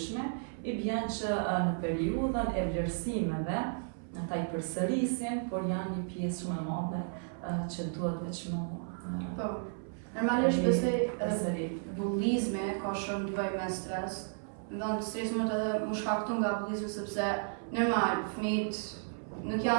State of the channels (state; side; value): silent; left; 56 dB below the other